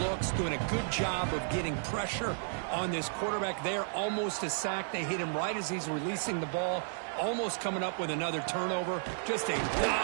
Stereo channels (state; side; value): silent; left; digital silence